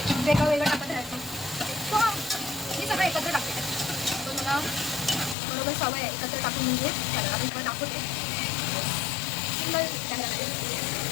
वेगळं वेगळं टाकत राहायचं. सो मी सगळं एकत्र टाकते. तो मला बरोबर सवय आहे एकत्र टाकून, म्हणजे त्याला मी पण दाखवते सिंगल कॅमेरा.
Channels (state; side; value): drops out; right; at 5.4 s